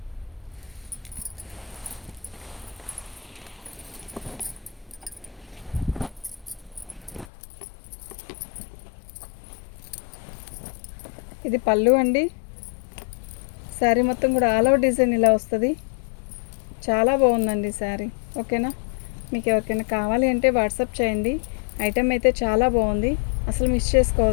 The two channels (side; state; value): right; drops out; at 7.2 s